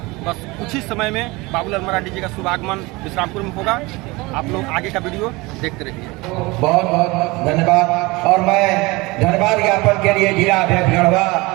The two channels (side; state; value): left; quieter; 23.4 dB